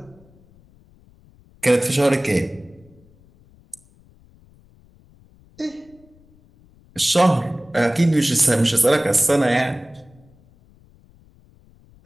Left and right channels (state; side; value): noise; left; rumble, 29 dB below the sound